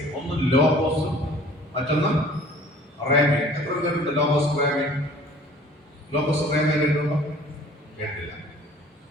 ഒന്ന് ലോഗോസും മറ്റൊന്ന് റേമേ. എത്ര പേരുണ്ട് ലോഗോസ് റേമേ? ലോഗോസ് റേമേ കേട്ടിട്ടുണ്ടോ? കേട്ടില്ല.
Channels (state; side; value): normal; both; correlation 0.50